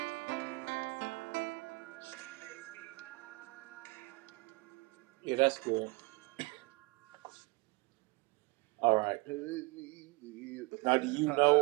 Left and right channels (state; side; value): quieter; left; 25.4 dB